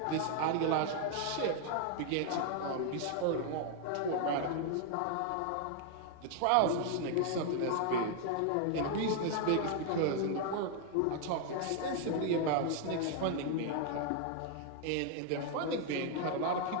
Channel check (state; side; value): different; both; correlation 0.00